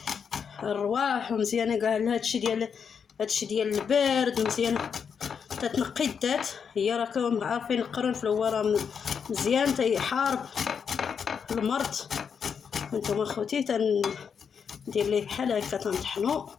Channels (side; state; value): right; quieter; 6.7 dB